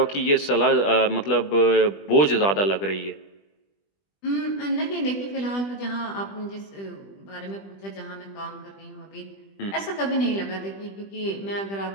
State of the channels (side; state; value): right; late; 20 ms